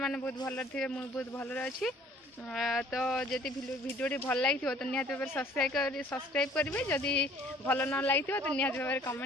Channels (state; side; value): normal; both; correlation 0.55